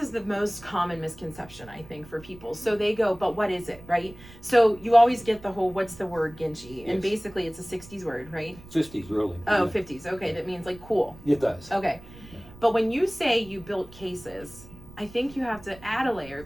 the most common misconception, I think, for people. So they go, but what is it, right? So you always get the whole, what's the word Ginchy? And basically it's a 60s word, right? 50s, really. Oh, yeah. 50s. Okay, that means like cool. It does. Okay. But when you say you built cases, I think you have to add a layer,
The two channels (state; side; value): noise; right; rumble, 20 dB below the sound